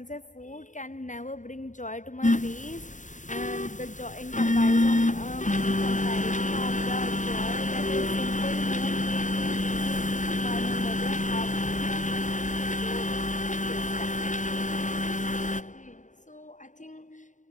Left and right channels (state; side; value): late; right; 0.36 ms